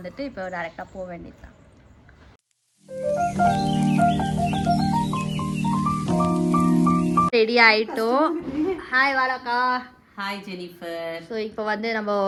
இப்போ டைரெக்டாக போக வேண்டியதுதான். ரெடி ஆயிட்டோம். ஹாய் வாராக்கா. Hi Jennifer. ஸோ இப்போ வந்து நம்ம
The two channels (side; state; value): both; identical; correlation 1.00